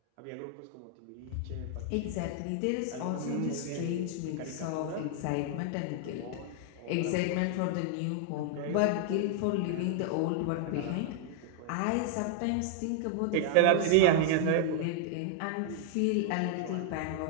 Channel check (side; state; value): both; different; correlation 0.00